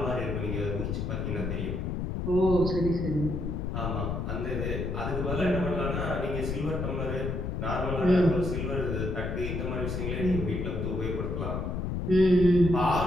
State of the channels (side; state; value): left; noise; rumble, 2 dB below the sound